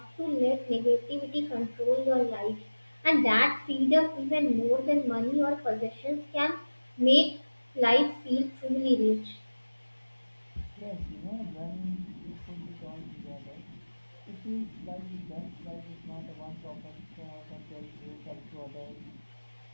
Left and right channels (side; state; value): both; inverted; correlation -1.00